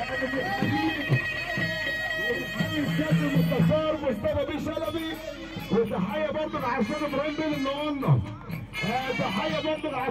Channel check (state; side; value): identical; both; correlation 1.00